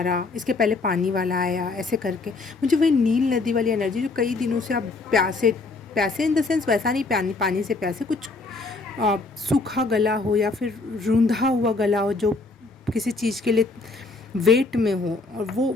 रहा, इसके पहले पानी वाला आया, ऐसे करके मुझे वही नील नदी वाली एनर्जी, जो कई दिनों से आप प्यासे, प्यासे इन द सेंस वैसा नहीं, पानी पानी से प्यासे, कुछ सूखा गला हो या फिर रूंधा हुआ गला हो, जो किसी चीज़ के लिए वेट में हो, और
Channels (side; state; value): right; quieter; 3.6 dB